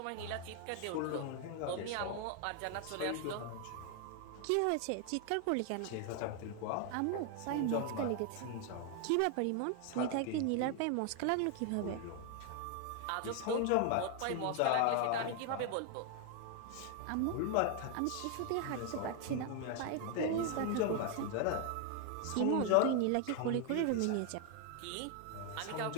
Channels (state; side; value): different; both; correlation 0.00